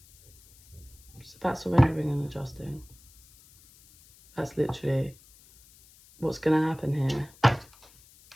It's about surrendering and adjusting. That's literally what's going to happen here.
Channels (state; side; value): noise; left; hiss, 26 dB below the sound